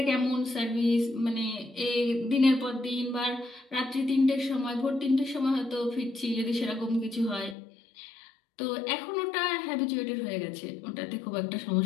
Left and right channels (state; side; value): drops out; right; at 7.6 s